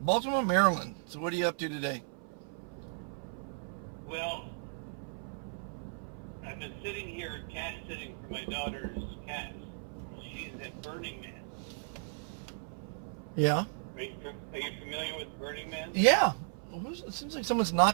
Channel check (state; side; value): silent; left; 54 dB below the other